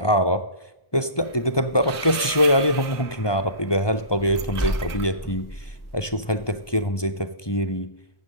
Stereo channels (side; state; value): right; late; 1.2 ms